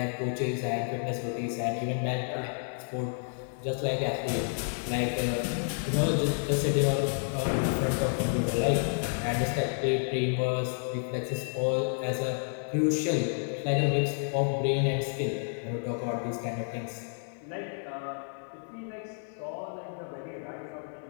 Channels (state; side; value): silent; right; 58 dB below the other